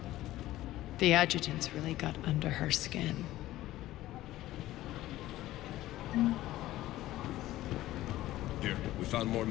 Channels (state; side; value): quieter; right; 15.5 dB